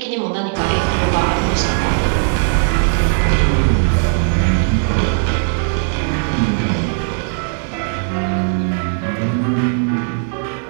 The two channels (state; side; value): silent; left; 58 dB below the other